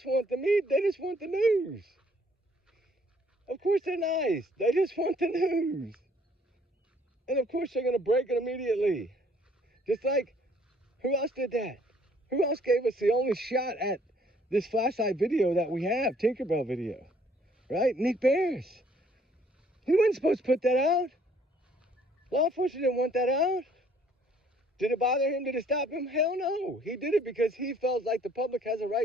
want the media. They just want the news. Of course they're nice. They just want the news. And of course they're going to break it immediately. Just like, who else did that? Who else gave us the only shot at this flashlight video that we have, Tinkerbell video, right? Nick Bears. He wasn't supposed to put that out. Law enforcement didn't want that out. Did it bother him? Did it stop him? Hell no. He did it because he felt like the public has a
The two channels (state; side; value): normal; both; correlation 0.61